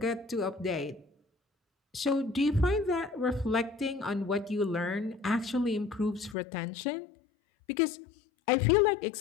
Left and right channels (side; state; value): right; drops out; at 6.4 s